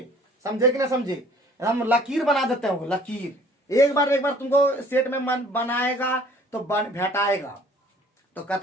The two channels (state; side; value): normal; both; correlation 0.54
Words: समझे कि ना समझे। हम लकीर बना देते हैं, वो लकीर एक बार तुमको सेट में मन बनाएगा तो भेटाएगा। तो